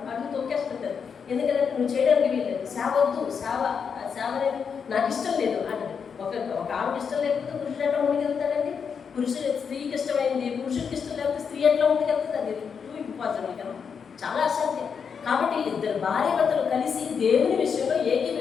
అడుగు తొక్కేస్తుంటారు. ఎందుకంటే నువ్వు చేయడానికి వీల్లేదు, సేవ అనేది నాకు ఇష్టం లేదు అంటే ఒక ఆమెకి ఇష్టం లేకపోతే పురుషుడు ఎట్లా ముందుకెళ్తాడండి? స్త్రీకి ఇష్టమైంది పురుషుడికి ఇష్టం లేకపోతే స్త్రీ ఎట్లా ముందుకెళ్తుంది? అది టూ ఇంపార్టెంట్ కదా, చాలా అసాధ్యం. కాబట్టి ఇద్దరు భార్య భర్తలు కలిసి దేవుని విషయంలో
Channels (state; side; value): quieter; right; 6.5 dB